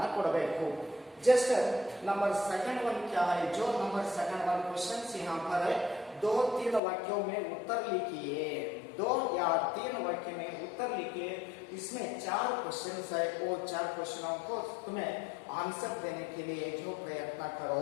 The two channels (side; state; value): right; drops out; at 6.8 s